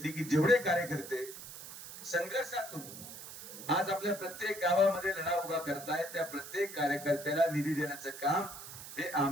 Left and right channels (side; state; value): right; noise; hiss, 12 dB below the sound